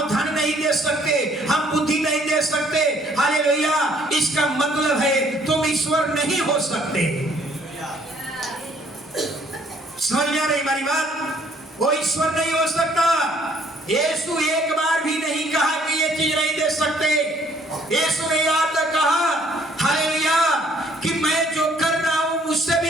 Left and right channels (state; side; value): normal; both; correlation 0.62